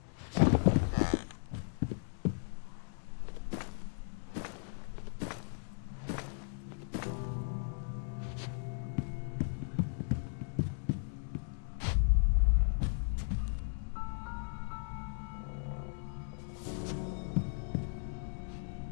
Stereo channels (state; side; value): silent; right; digital silence